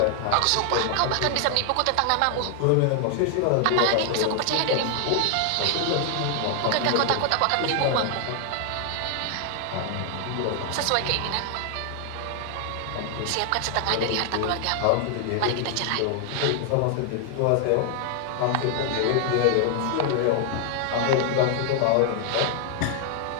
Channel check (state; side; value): different; both; correlation 0.00